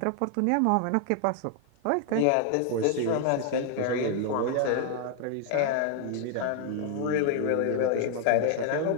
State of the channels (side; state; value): both; different; correlation 0.00